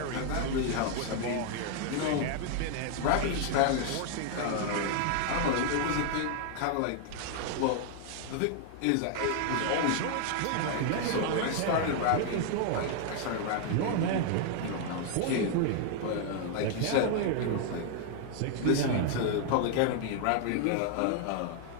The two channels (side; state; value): both; different; correlation 0.00